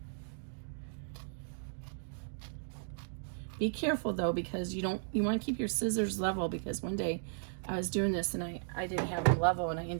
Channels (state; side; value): silent; left; digital silence